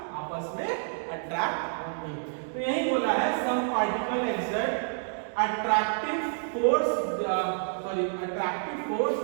आपस में अट्रैक्ट होंगे। तो यही बोला है some particle exert attractive force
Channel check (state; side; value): silent; left; digital silence